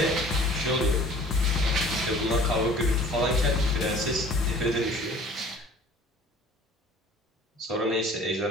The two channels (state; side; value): normal; both; correlation 0.48